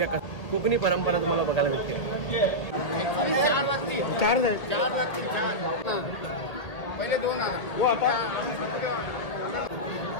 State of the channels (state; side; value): late; right; 1.8 ms